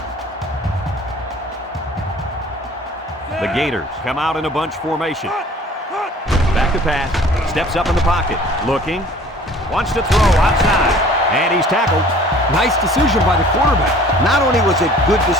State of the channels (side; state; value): both; normal; correlation 0.50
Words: The Gators come out in a bunch formation. Back to pass. Steps up in the pocket. Looking. Wants to throw outside. And he's tackled. Nice decision by the quarterback. Not only was it good